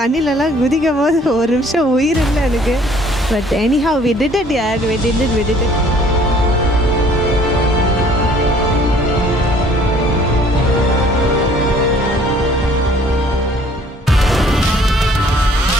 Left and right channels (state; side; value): normal; both; correlation 0.57